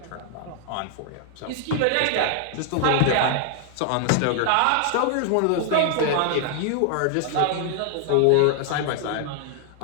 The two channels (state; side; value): different; both; correlation 0.00